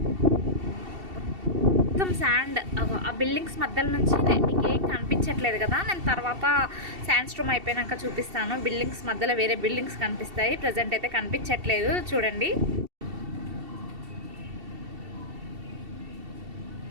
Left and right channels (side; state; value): left; late; 2.7 ms